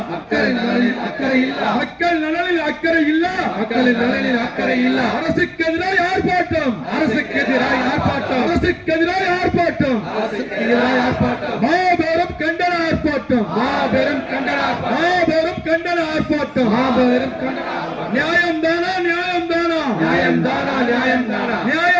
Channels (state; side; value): identical; both; correlation 1.00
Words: மக்கள் நலனில் அக்கறை இல்ல, மக்கள் நலனில் அக்கறை இல்ல, மக்களின் நலனில் அக்கறை இல்ல. அரசுக்கு எதிராக ஆர்ப்பாட்டம், அரசுக்கு எதிராக ஆர்ப்பாட்டம், அரசுக்கு எதிராக ஆர்ப்பாட்டம், அரசுக்கு எதிராக ஆர்ப்பாட்டம். மாபெரும் கண்டன ஆர்ப்பாட்டம், மாபெரும் கண்டன, மாபெரும் கண்டன ஆர்ப்பாட்டம், மாபெரும் கண்டன. நியாயம் தானா, நியாயம் தானா, நியாயம் தானா, நியாயம் தானா,